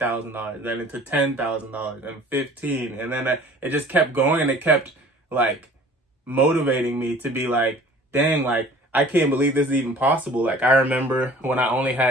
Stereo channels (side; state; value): both; normal; correlation 0.48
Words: then into $10,000 and 15. And then it just kept going, and it kept like motivating me to be like, dang, like I can't believe this is even possible. Like I remember when I only